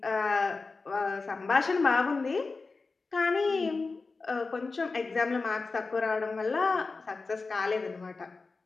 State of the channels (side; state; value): right; quieter; 4.0 dB